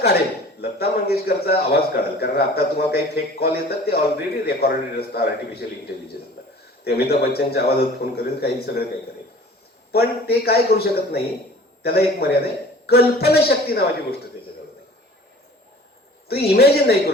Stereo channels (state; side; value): normal; both; correlation 0.46